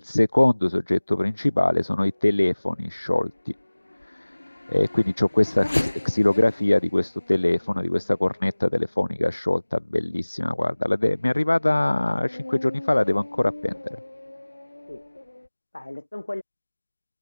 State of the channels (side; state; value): both; inverted; correlation -1.00